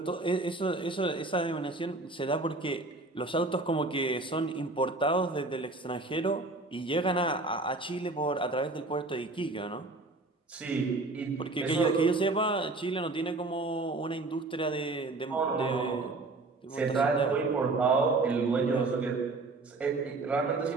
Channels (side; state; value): left; quieter; 3.2 dB